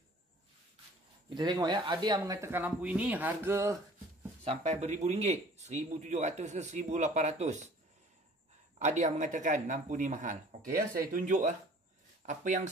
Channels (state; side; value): normal; both; correlation 0.50